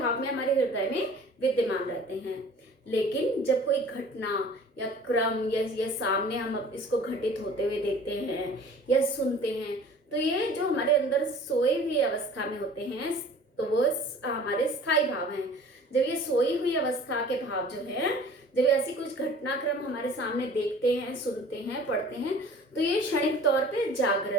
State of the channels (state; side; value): normal; both; correlation 0.47